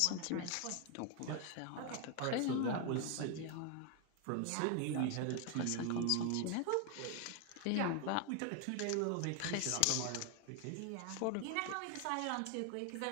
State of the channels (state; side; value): different; both; correlation 0.01